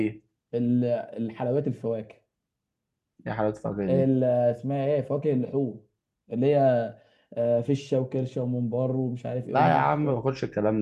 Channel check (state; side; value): identical; both; correlation 1.00